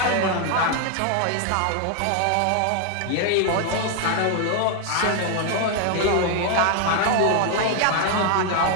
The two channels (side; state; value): both; different; correlation 0.00